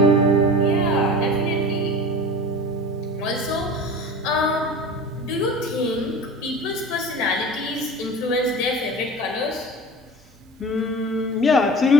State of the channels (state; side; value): normal; both; correlation 0.36